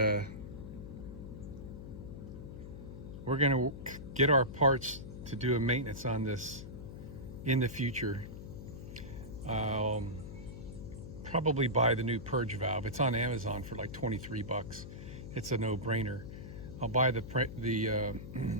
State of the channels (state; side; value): noise; left; hum, 11 dB below the sound